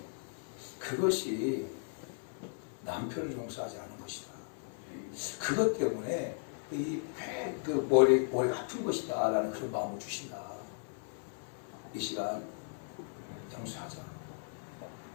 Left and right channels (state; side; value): silent; right; 54 dB below the other